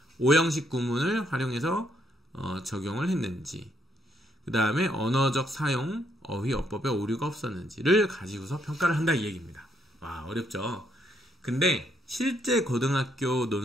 5형식 구문을 활용해서 적용을 했는지, 그 다음에 언어적 사용, 어휘, 어법에 오류가 없었는지를 가지고서 평가를 한다 이 얘기입니다. 와, 어렵죠? 근데 실제 고등학교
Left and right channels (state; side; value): normal; both; correlation 0.73